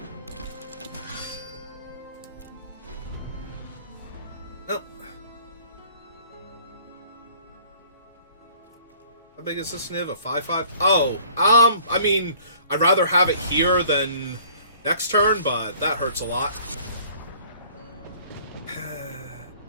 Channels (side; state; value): both; inverted; correlation -0.54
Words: Nope. How big is this Niv? A 5/5? Oh, I mean, I'd rather have it here than next turn, but that hurts a lot.